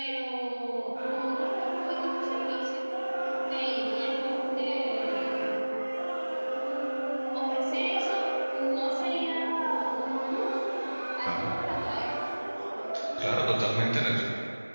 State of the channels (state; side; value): inverted; both; correlation -1.00